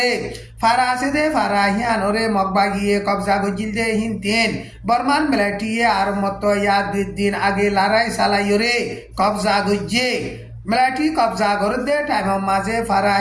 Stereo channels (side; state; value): both; identical; correlation 1.00